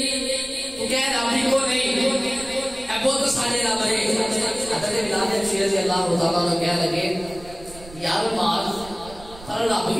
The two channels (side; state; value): right; noise; rumble, 19 dB below the sound